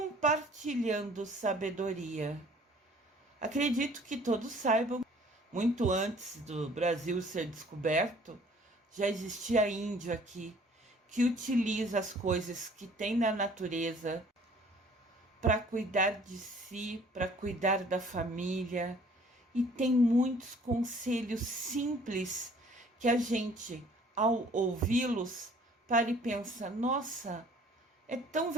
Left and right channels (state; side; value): normal; both; correlation 0.55